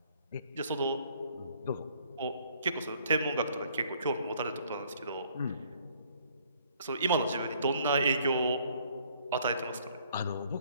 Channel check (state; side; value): inverted; both; correlation -0.62